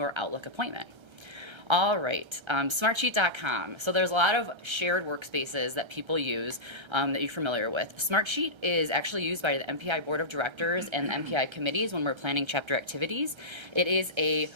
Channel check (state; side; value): late; left; 1.3 ms